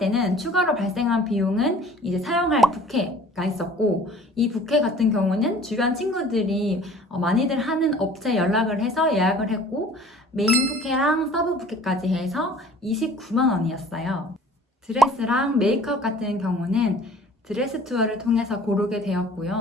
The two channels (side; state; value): both; normal; correlation 0.49